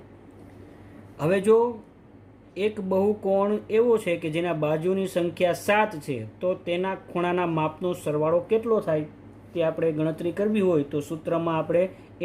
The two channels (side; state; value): both; identical; correlation 1.00